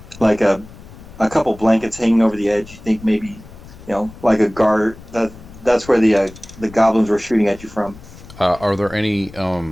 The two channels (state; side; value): noise; left; rumble, 19 dB below the sound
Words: like a couple blankets hanging over the edge. You think maybe, like a guard. That's where the goblins were shooting at you from. Are there any